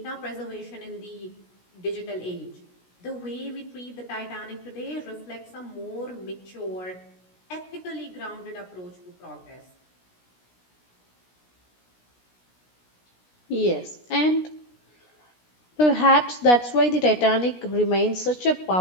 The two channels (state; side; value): late; right; 16 ms